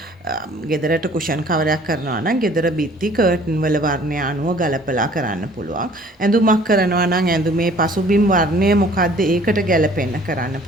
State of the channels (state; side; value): normal; both; correlation 0.54